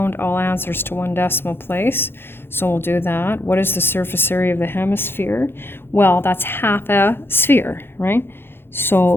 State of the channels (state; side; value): late; right; 0.11 ms